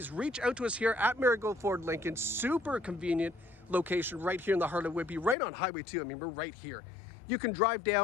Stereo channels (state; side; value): drops out; right; at 5.4 s